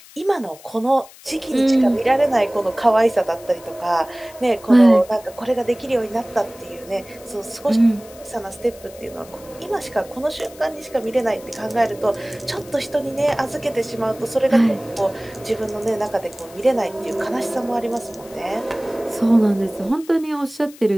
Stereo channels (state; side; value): noise; left; hiss, 21 dB below the sound